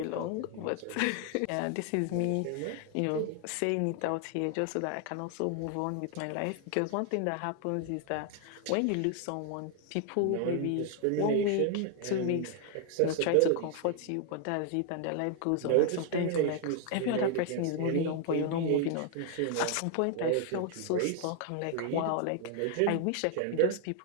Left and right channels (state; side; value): different; both; correlation 0.00